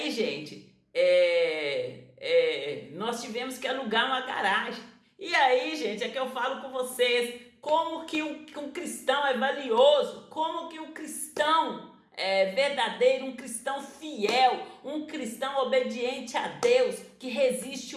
gente, nós tivemos que alugar uma garagem. E aí, gente, é que eu falo com vocês como que um cristão é valioso, como que um cristão verdadeiro, um cristão fiel, um cristão obediente a Deus, que resiste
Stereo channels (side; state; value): both; identical; correlation 1.00